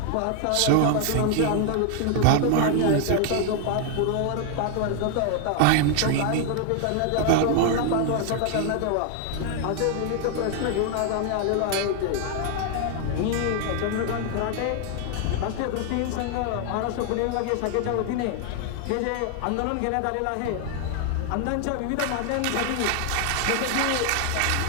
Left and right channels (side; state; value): both; different; correlation 0.00